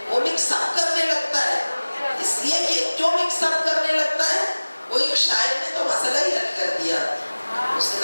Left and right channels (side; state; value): both; inverted; correlation -1.00